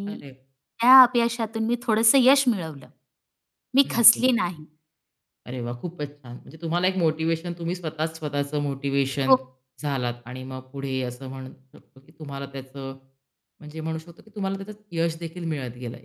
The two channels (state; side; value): identical; both; correlation 1.00